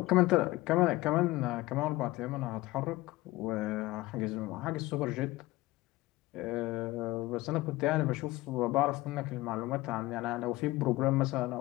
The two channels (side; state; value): right; quieter; 19.0 dB